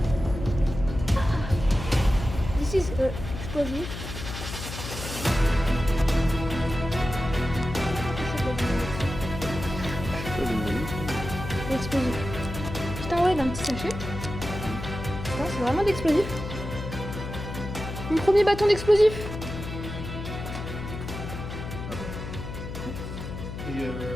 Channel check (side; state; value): left; noise; hum, 8 dB below the sound